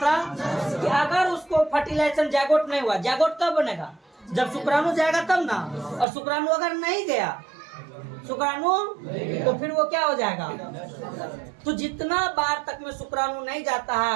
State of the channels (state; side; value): drops out; left; at 6.1 s